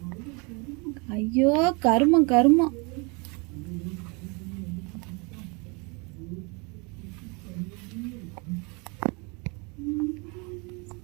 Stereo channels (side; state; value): left; quieter; 30.5 dB